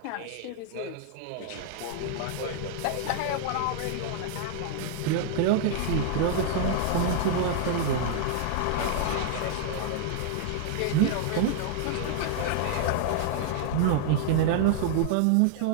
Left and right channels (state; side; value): different; both; correlation -0.01